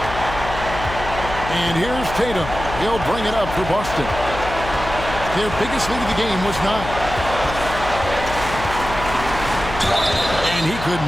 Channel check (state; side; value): noise; left; hum, 9 dB below the sound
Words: And here's Tatum. He'll bring it up for Boston. Their biggest lead of the game was 9. And he could